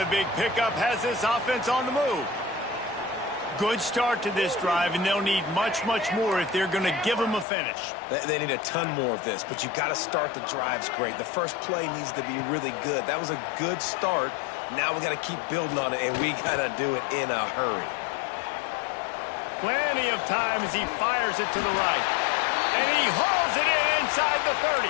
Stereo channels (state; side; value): drops out; right; at 7.5 s